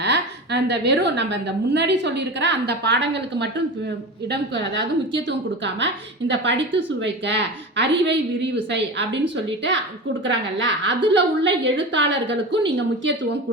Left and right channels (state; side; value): normal; both; correlation 0.28